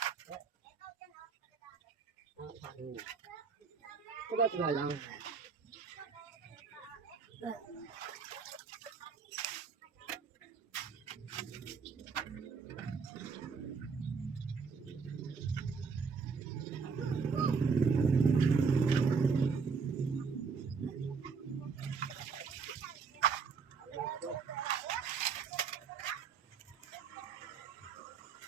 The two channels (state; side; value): quieter; left; 5.4 dB